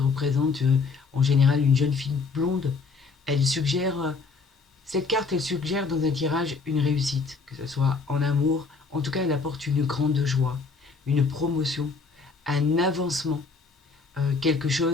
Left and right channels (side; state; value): right; quieter; 4.5 dB